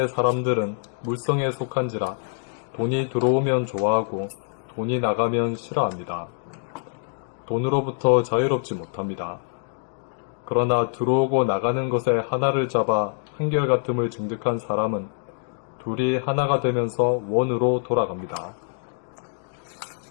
사람들은 물성에 속한지라 돈이 들어오면 좋아하고 돈이 나가면 싫어합니다. 돈으로부터 자유롭지 못합니다. 그러나 들어오고 나가는 것에 하나를 잡아 한결같음을 증득한 사람은 둘이 하나가 되면서 원으로 돌아갑니다.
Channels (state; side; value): silent; right; digital silence